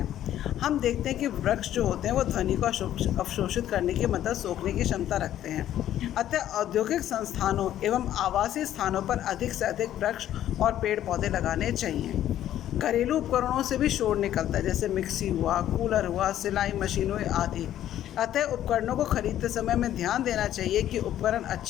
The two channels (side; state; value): right; quieter; 11.9 dB